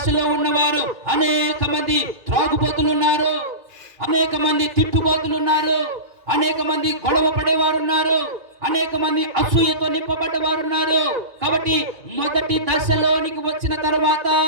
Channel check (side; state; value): left; late; 2.4 ms